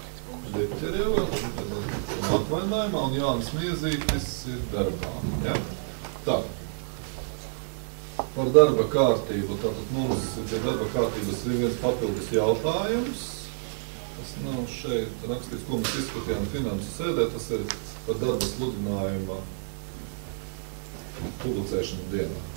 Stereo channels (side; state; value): left; silent; digital silence